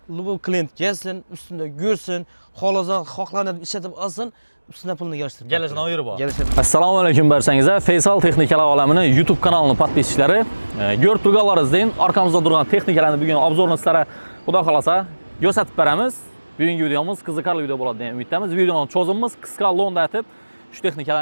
bu klient kelsin, ustunda ko'rsin, xohlanib ishlatib olsin, ustuna pulni yig'ishtirib. Kelishini o'yiri bor. Assalomu alaykum barchangizlar. Faysal Texnikalar olamining YouTube kanalining podpischilari, ko'rib turganlaringizdek, orqamizda turgan texnikalarni bugun obzorni sizlarga xudo xolasa ko'rsatib beramiz. Bugungi videomiz qiziqarli video bo'ladi degan umiddamiz. Videoning cho'zimimiz qisqa lo'nda aytib, shu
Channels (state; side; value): inverted; both; correlation -1.00